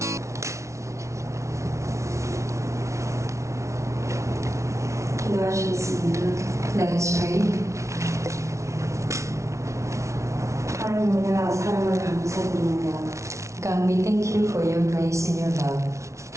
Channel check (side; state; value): left; late; 0.14 ms